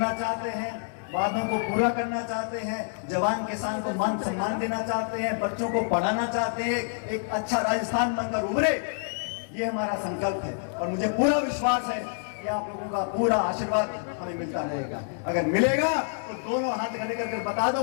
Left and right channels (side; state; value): right; silent; digital silence